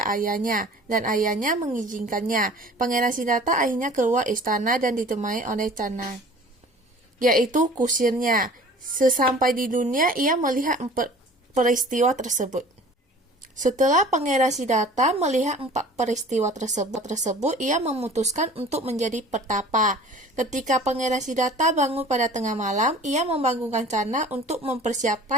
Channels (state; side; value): normal; both; correlation 0.45